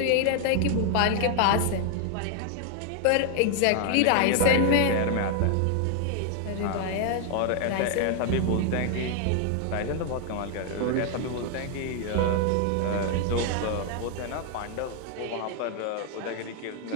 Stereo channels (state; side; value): different; both; correlation 0.00